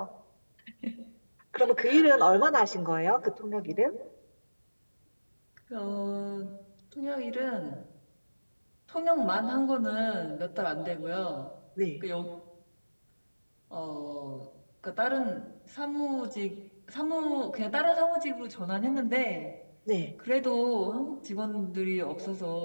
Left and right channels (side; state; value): both; inverted; correlation -1.00